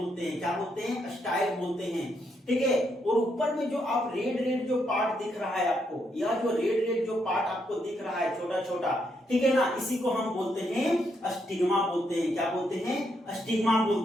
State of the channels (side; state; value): both; normal; correlation 0.77